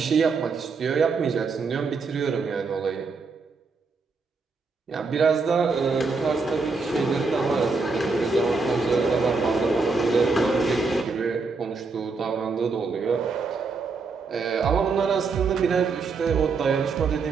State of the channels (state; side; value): quieter; left; 4.4 dB